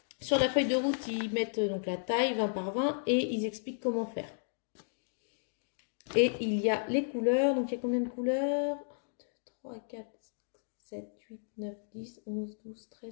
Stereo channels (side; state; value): right; silent; digital silence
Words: sur la feuille de route, ils mettent donc la taille 20 par 20 et ils expliquent comment faire. Et il y a les couleurs. Donc, il y a combien de couleurs? 1, 2, 3, 4, 7, 8, 9, 10, 11, 12,